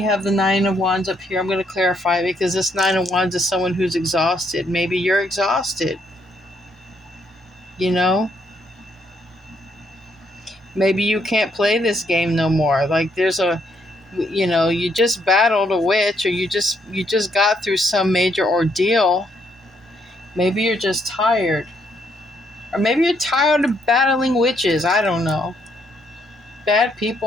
have the 9 of Wands up here. I'm going to clarify, because this 9 of Wands is someone who's exhausted. Maybe you're exhausted. Maybe you can't play this game no more. Like, there's you just battled a witch, or you just got through some major ordeal. Maybe you're just tired. Or maybe you're tired of battling witches. I don't know. Bad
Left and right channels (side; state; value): both; normal; correlation 0.73